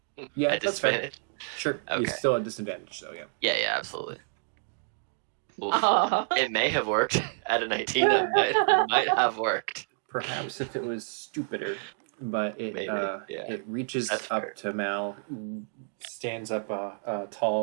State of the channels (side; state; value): left; silent; digital silence